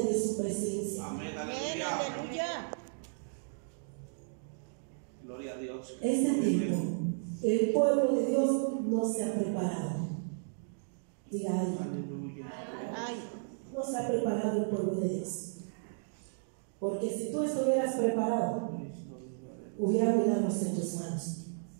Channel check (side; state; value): left; silent; digital silence